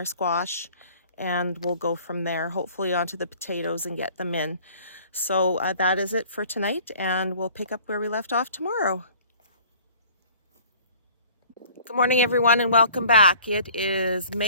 squash, and we'll go from there, hopefully onto the potatoes and get them in. So that is it for tonight, and we'll pick up where we left off tomorrow. Good morning, everyone, and welcome back. It is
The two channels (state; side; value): inverted; both; correlation -0.51